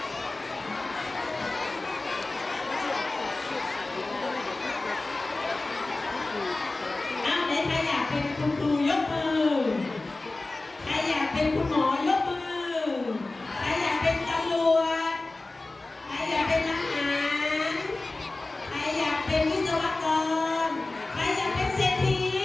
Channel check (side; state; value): right; quieter; 3.1 dB